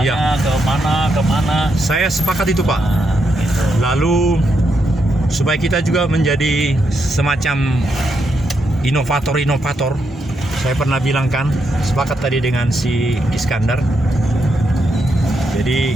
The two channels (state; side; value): normal; both; correlation 0.81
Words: iya. kemana. Saya sepakat itu Pak. Nah, gitu. Lalu supaya kita juga menjadi semacam inovator. Saya pernah bilang kan, sepakat tadi dengan si Iskandar. Jadi